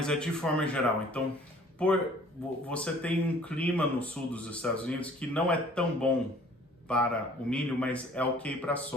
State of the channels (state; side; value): normal; both; correlation 0.53